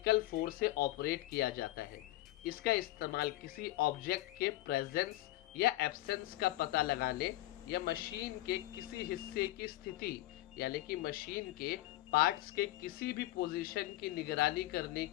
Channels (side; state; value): right; quieter; 16.6 dB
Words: फोर्स से ऑपरेट किया जाता है। इसका इस्तेमाल किसी ऑब्जेक्ट के प्रेजेंस या एब्सेंस का पता लगाने या मशीन के किसी हिस्से की स्थिति, यानी कि मशीन के पार्ट्स के किसी भी पोजीशन की निगरानी करने